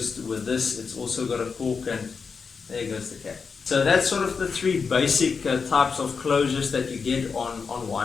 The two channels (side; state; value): right; quieter; 5.4 dB